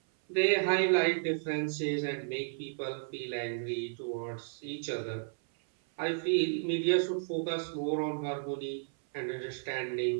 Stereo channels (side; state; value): left; silent; 56 dB below the other